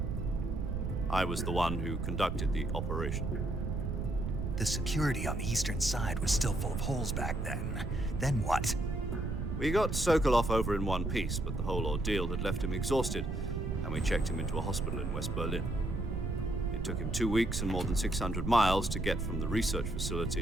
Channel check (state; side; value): noise; right; rumble, 2 dB below the sound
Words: I was the one who conducted the operation. The security on the eastern side was still full of holes back then. Then what? We got Sokolov over in one piece, but the whole ordeal had left him exhausted, and we checked him into a hospital in West Berlin. It took him 2 weeks and more than 600 miles to get from the research